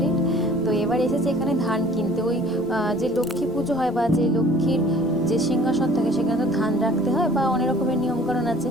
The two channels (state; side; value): normal; both; correlation 0.51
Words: তো এবার এসেছে এখানে ধান কিনতে। ওই যে লক্ষ্মী পুজো হয় বা যে লক্ষ্মীর যে সিংহাসন থাকে সেখানে তো ধান রাখতে হয় বা অনেক রকমের নিয়মকানুন আছে,